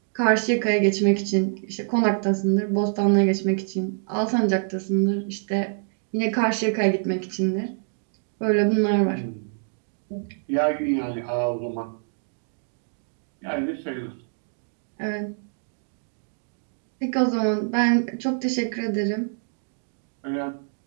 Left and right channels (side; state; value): left; silent; digital silence